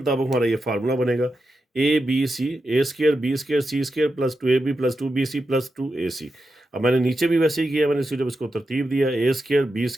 हमारा ये फार्मूला बनेगा, A square B square C square plus 2ab plus 2bc plus 2ac। अब मैंने नीचे भी वैसे ही किया, मैंने जब इसको तरतीब दिया, ए square B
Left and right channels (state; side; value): normal; both; correlation 0.88